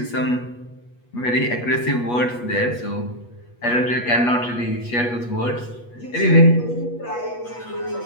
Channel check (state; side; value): late; right; 8.3 ms